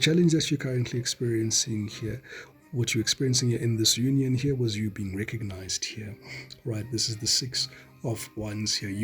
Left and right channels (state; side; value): identical; both; correlation 1.00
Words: that you're currently experiencing here, what you're experiencing here in this union here, was you being recognized here. Right, this is the Six of Wands here.